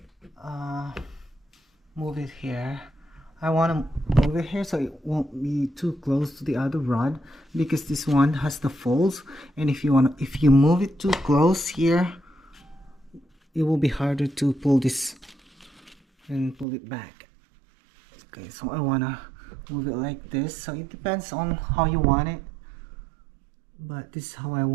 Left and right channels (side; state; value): left; drops out; at 16.7 s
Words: move it here. I want to move it here so it won't be too close to the other rod, because this one has the folds, and if you move it too close here, it will be harder to pull this and pull it back. Okay, so I want to move it like this. So it depends on how you want it, but this is how I